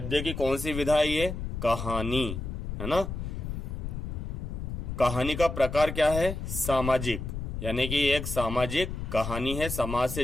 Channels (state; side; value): noise; left; rumble, 5 dB below the sound